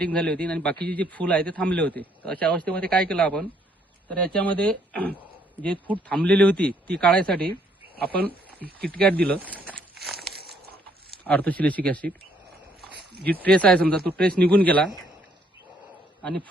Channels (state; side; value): normal; both; correlation 0.68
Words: झाली होती आणि बाकीचे जे फूल आहे ते थांबले होते. तर अशा अवस्थेमध्ये काय केलं आपण, तर याच्यामध्ये जे फूट थांबलेली होती ती काढायसाठी आपण किटकॅट दिलं, ऑर्थोसिलिसिक ॲसिड. जी ट्रेस आहे समजा तो ट्रेस निघून गेला आणि